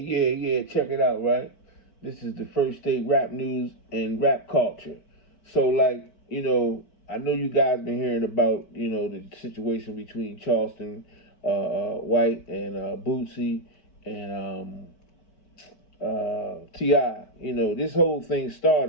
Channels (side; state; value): right; late; 5.0 ms